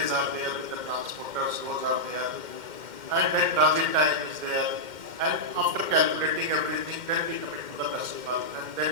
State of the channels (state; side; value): late; left; 2.1 ms